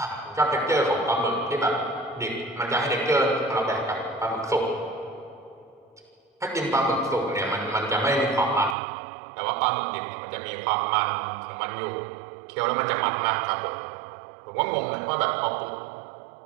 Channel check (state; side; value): drops out; left; at 8.8 s